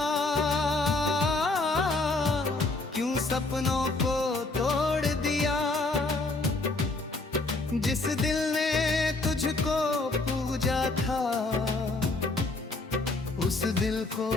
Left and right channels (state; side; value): quieter; right; 3.3 dB